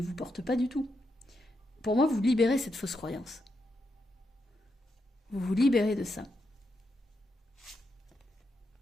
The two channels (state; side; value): normal; both; correlation 0.83